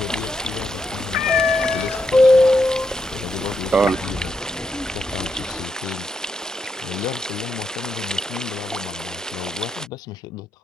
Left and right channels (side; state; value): both; normal; correlation 0.81